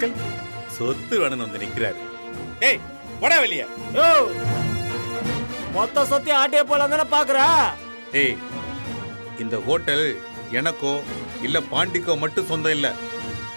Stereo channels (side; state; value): both; inverted; correlation -1.00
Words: சொத்து வேணும்னு வந்து நிக்கிறாரு. ஏய் போடா வெளிய. யோ, மொத்த சொத்தி ஆட்டிய போலாம் தானே பாக்குறா? ஏய், இந்த ஹோட்டல் எனக்கோ இல்ல பாண்டிக்கோ மட்டும் சொந்தம் இல்ல.